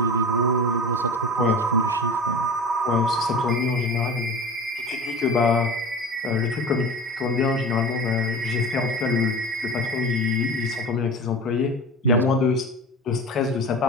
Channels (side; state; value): both; normal; correlation 0.35